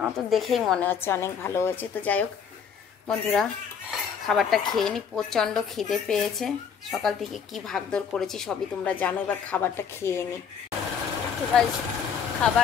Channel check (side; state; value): right; quieter; 7.0 dB